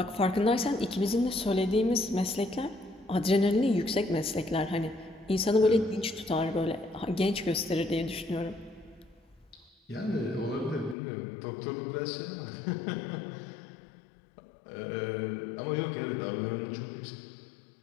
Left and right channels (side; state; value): right; drops out; at 11.0 s